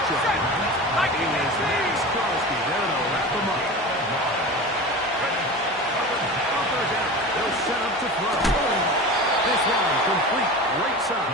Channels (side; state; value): both; normal; correlation 0.31